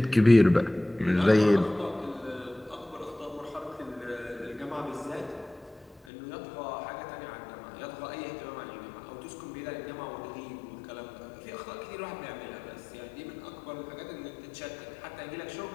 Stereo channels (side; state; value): right; drops out; at 6.1 s